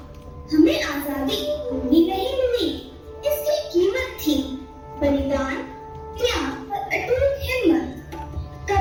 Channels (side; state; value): both; identical; correlation 1.00